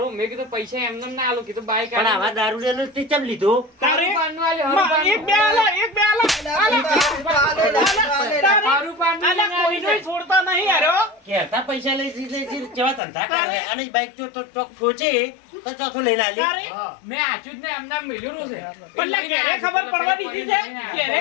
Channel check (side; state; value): right; drops out; at 13.0 s